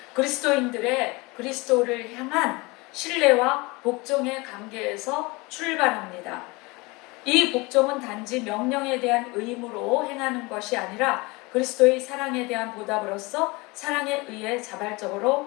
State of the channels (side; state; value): right; quieter; 24.9 dB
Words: 그리스도인들의 그리스도를 향한 신뢰와 복종의 관계에서 출발합니다. 이 복종은 단지 명령에 대한 의무로 행하는 것이 아니라 그리스도의 사랑에 대한 보답으로서 사랑에 의해